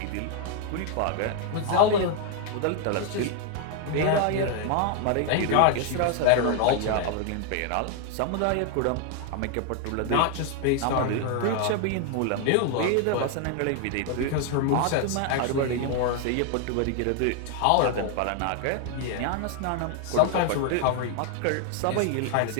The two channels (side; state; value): both; different; correlation 0.00